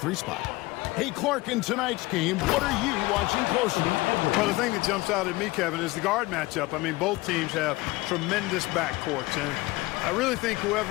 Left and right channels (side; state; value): right; quieter; 20.8 dB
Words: spot. Hey, Clark, in tonight's game, what are you watching closely? Well, the thing that jumps out at me, Kevin, is the guard matchup. I mean, both teams have tremendous backcourts, and I really think